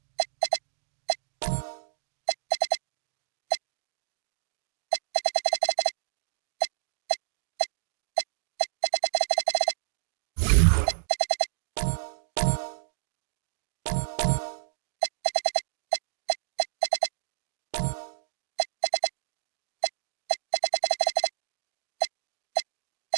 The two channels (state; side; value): silent; left; digital silence